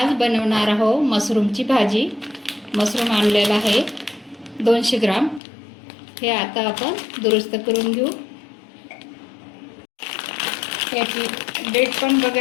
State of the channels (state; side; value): drops out; right; at 5.4 s